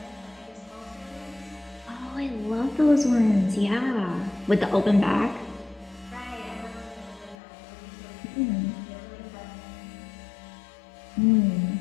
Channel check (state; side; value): drops out; right; at 7.4 s